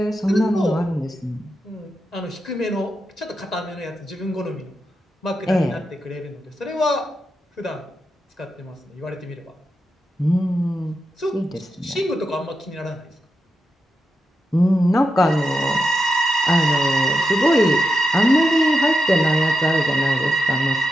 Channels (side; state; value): both; normal; correlation 0.87